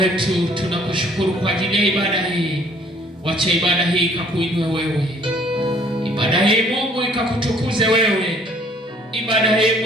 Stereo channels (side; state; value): both; normal; correlation 0.59